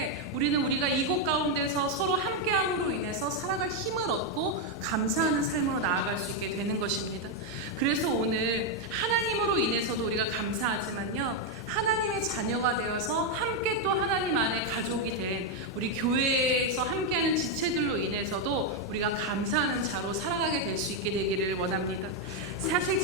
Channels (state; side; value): normal; both; correlation 0.02